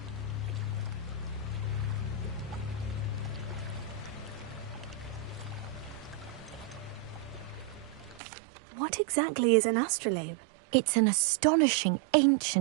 What exactly is an astrolabe? It's an astonishing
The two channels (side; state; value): left; drops out; at 8.2 s